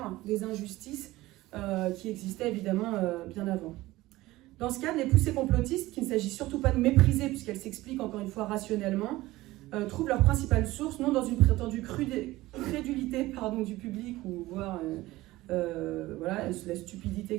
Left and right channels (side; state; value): left; quieter; 18.1 dB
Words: des injustices qui existaient évidemment bien avant. Dans ce cadre, les poussées complotistes, qu'il ne s'agit surtout pas de mépriser puisqu'elles s'expliquent encore une fois rationnellement, trouvent leur principale source non dans une prétendue crédulité du public ou voire voilà, la stupidité,